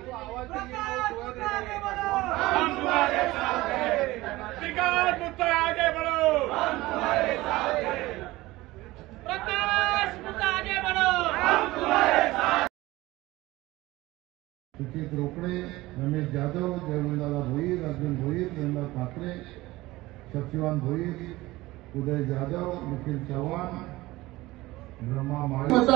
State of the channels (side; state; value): left; quieter; 19.0 dB